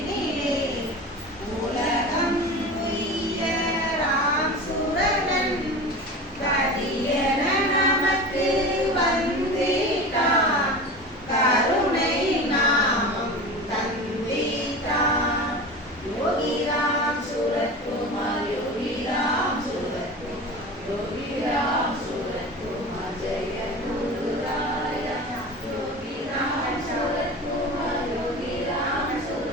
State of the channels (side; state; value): both; normal; correlation 0.32